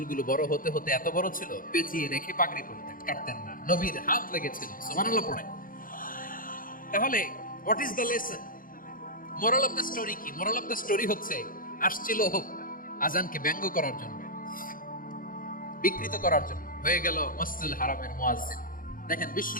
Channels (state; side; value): late; right; 0.40 ms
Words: বড় হতে হতে এত বড় ছিল, পেঁচিয়ে রেখে পাগড়ি পরতেন, কাটতেন না। নবীর হাত লেগেছিল। সুবহানাল্লাহ পড়ে। তাহলে what is the lesson? Moral of the story কি? মোরাল অফ দ্য স্টোরি হচ্ছে, আসছিল আজানকে ব্যঙ্গ করার জন্য, বিকৃত করার জন্য, হয়ে গেল মসজিদুল হারামের মুয়াজ্জিন। দেখেন